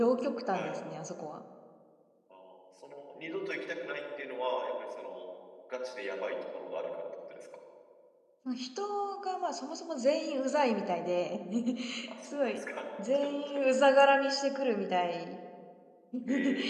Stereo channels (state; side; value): identical; both; correlation 1.00